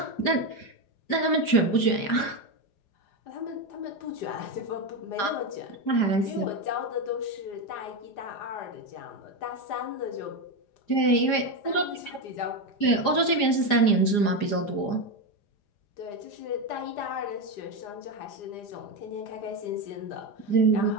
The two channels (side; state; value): right; late; 4.9 ms